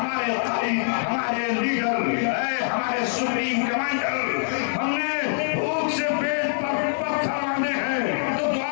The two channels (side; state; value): right; silent; digital silence